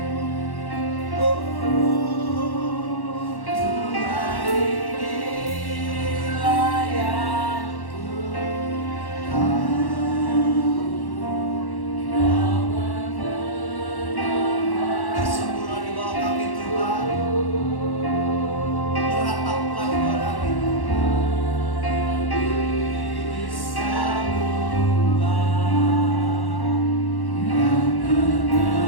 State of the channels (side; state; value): right; late; 1.1 ms